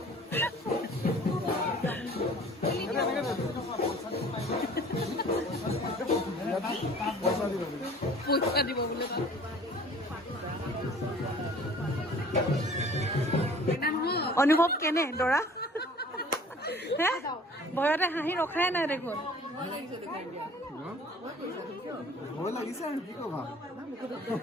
পইচা দিব বোলে অনুভৱ কেনে দৰা হে ভয়তে হাঁহি ৰখাই নাই দেখোন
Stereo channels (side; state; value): both; normal; correlation 0.49